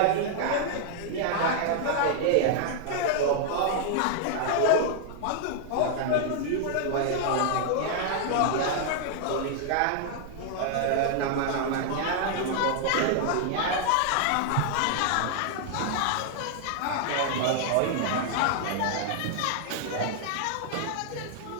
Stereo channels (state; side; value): different; both; correlation 0.00